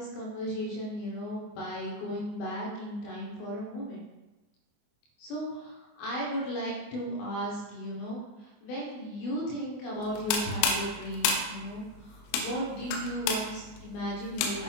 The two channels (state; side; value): late; right; 24 ms